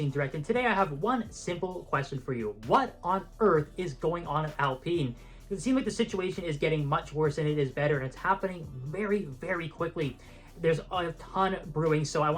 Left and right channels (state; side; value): identical; both; correlation 1.00